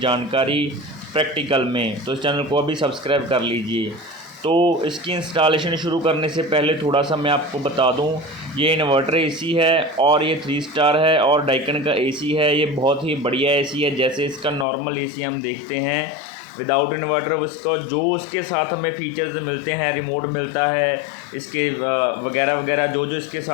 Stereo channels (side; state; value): right; drops out; at 14.7 s